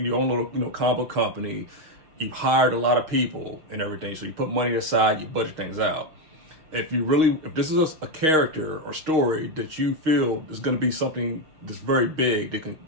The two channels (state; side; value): late; left; 6.4 ms